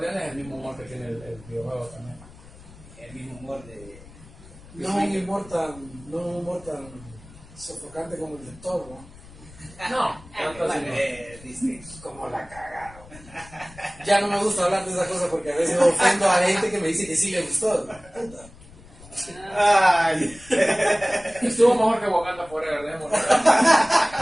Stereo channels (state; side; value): noise; left; rumble, 21 dB below the sound